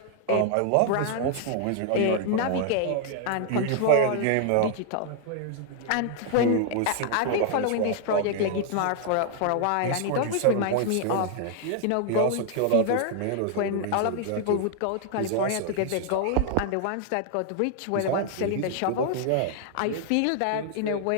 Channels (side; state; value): both; different; correlation 0.00